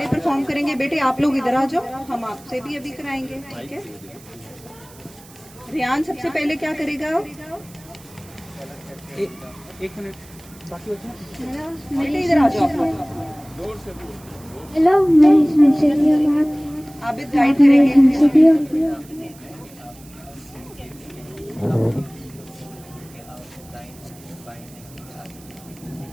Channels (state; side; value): noise; right; hiss, 23 dB below the sound